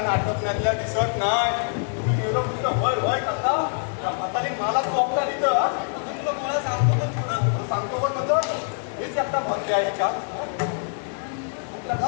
नाटक नेल्या दिसत नाही तुम्ही गेलो नुसतं वय वय करता म्हातारी मला चोपता तिथं तुला मला सांगतो तर पुढं सांगतो पण नंतर मीच एकटा भरते आहे याच्यात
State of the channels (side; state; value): right; silent; 62 dB below the other